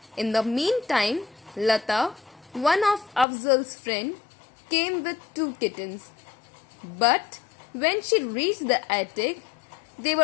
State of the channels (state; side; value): drops out; right; at 3.2 s